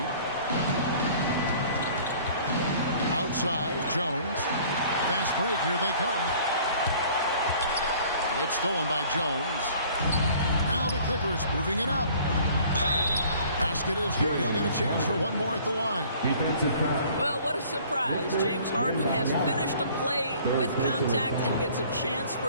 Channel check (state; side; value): inverted; both; correlation -0.52